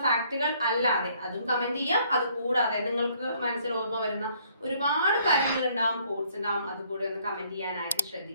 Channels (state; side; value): inverted; both; correlation -0.64